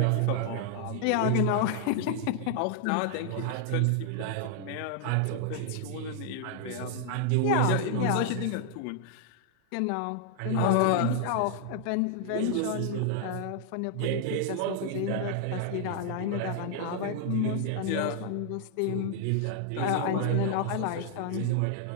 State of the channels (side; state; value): both; different; correlation 0.00